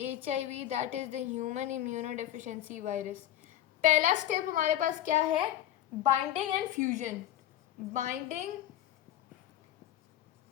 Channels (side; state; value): right; quieter; 12.2 dB